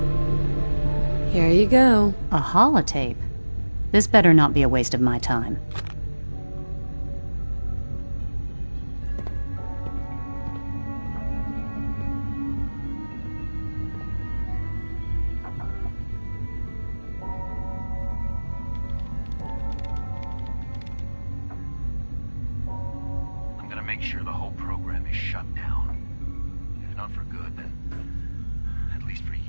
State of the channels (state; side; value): inverted; both; correlation -1.00